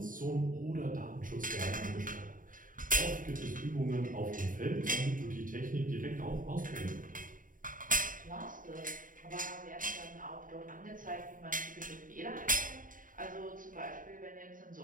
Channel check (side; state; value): left; late; 0.39 ms